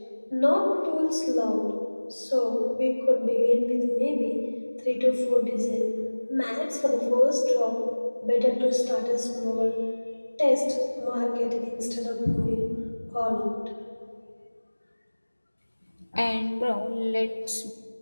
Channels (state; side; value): inverted; both; correlation -1.00